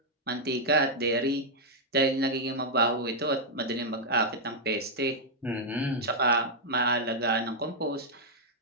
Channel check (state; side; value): normal; both; correlation -0.04